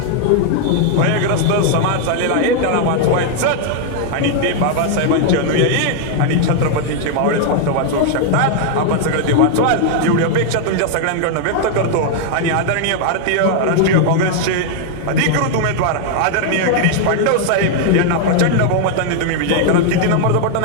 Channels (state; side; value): different; both; correlation 0.00